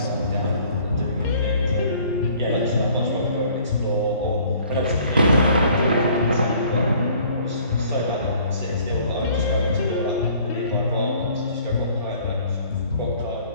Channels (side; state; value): both; inverted; correlation -0.56